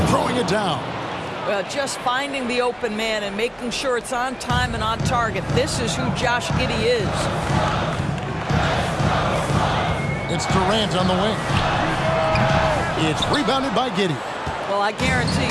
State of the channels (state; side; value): identical; both; correlation 1.00